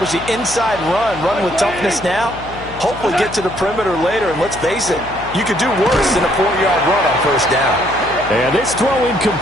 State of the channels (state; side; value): noise; left; hum, 14 dB below the sound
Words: the inside run with toughness now, hopefully get to the perimeter later. And let's face it, you could do worse than a 4-yard run on first down. And this throw